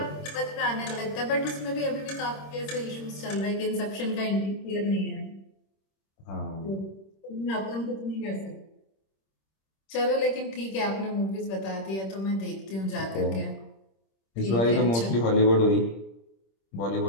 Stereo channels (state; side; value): late; right; 26 ms